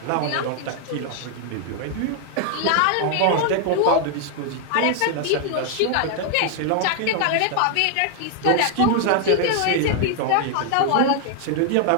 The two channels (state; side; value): different; both; correlation 0.00